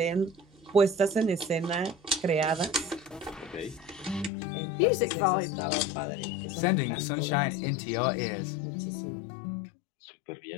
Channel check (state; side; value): drops out; right; at 4.3 s